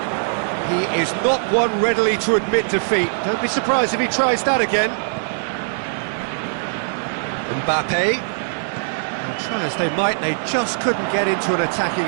He is not one readily to admit defeat. Don't be surprised if he tries that again. Mbappe. Well, try as they might, they just couldn't get into an attacking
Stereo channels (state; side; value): silent; left; digital silence